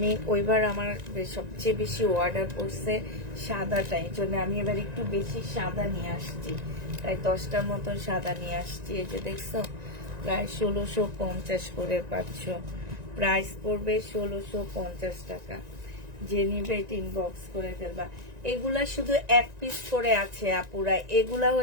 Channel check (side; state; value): left; late; 1.9 ms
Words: ওইবার আমার সবচেয়ে বেশি অর্ডার করছে সাদাটা, এই জন্য আমি এবার একটু বেশি সাদা নিয়ে আসছি। প্রায় 10টার মতো সাদা নিয়ে আসছি। এই যে দেখছো, প্রায় 1650 করে পাচ্ছ। প্রাইস পড়বে 1650 টাকা। যে নিবে এটা ইনবক্স করে ফেলবা। এগুলা শুধু এক পিস করে আছে আপুরা। এগুলা